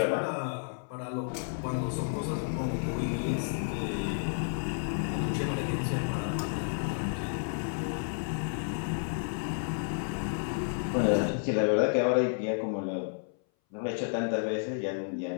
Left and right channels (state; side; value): silent; right; 57 dB below the other